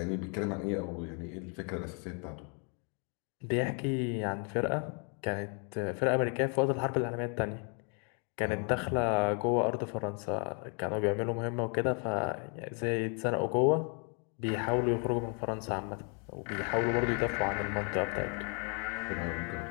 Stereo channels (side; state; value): right; quieter; 38.3 dB